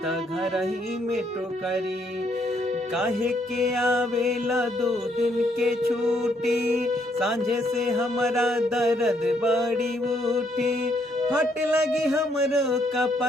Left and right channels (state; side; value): normal; both; correlation 0.71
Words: त घर ही में टोकरी। काहे के आवेला 2 दिन के छुट्टी, सांझे से हमारा दर्द बड़ी उठी, फट लगी हमरो